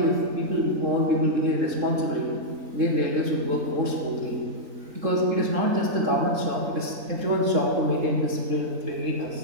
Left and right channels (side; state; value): left; late; 3.7 ms